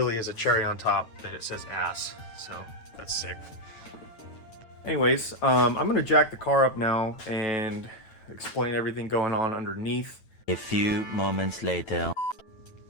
a cherry on top that it says ASS, so that's sick. Anyways, I'm gonna jack the car up now and explain everything going on underneath. A few moments later.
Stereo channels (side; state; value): right; late; 9.1 ms